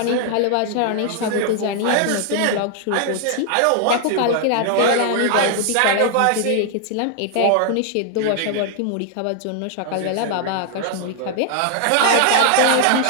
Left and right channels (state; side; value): different; both; correlation 0.00